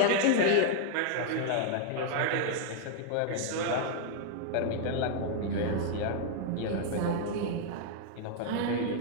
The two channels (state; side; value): different; both; correlation 0.00